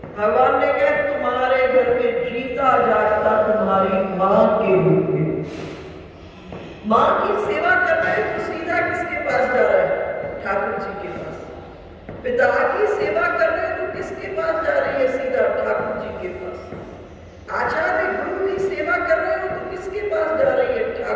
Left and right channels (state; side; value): identical; both; correlation 1.00